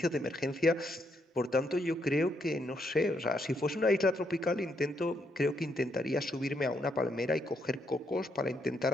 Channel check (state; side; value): normal; both; correlation 0.76